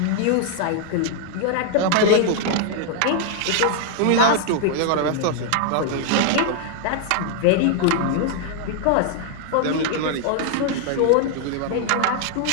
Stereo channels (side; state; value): both; different; correlation 0.00